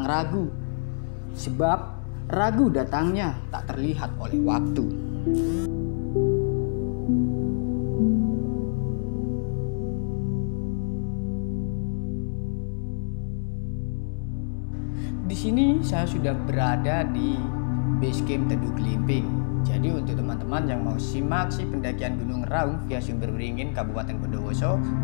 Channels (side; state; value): right; silent; 57 dB below the other